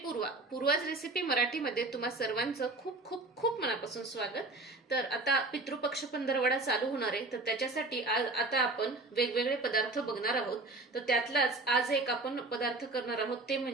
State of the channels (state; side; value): quieter; left; 3.2 dB